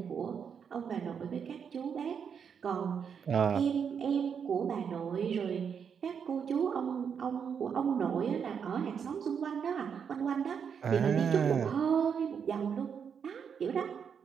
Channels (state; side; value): quieter; left; 7.1 dB